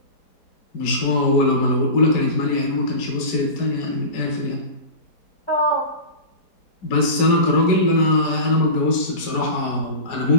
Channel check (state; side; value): late; right; 5.0 ms